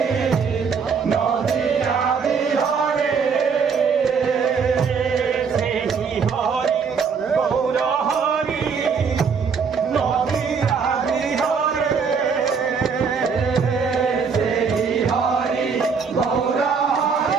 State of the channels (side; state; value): left; quieter; 5.8 dB